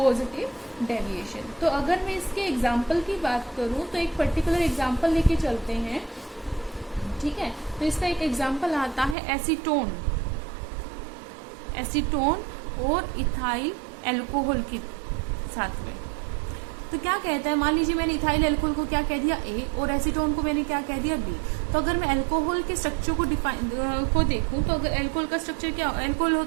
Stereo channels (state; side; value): drops out; left; at 9.2 s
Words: डेविएशन। तो अगर मैं इसके एग्जाम्पल की बात करूं तो एक पर्टिकुलर एग्जाम्पल लेके चलते हैं, ठीक है। तो इसका एक एग्जाम्पल आता है एसीटोन और इथाइल एल्कोहल के साथ में। तो क्या कहता है, मान लीजिए मैंने इथाइल एल्कोहल को क्या कह दिया A और एसीटोन को मैंने क्या कह दिया B। तो अगर मैं अल्कोहल के स्ट्रक्चर को देखूं तो अगर अल्कोहल का स्ट्रक्चर क्या, अल्कोहल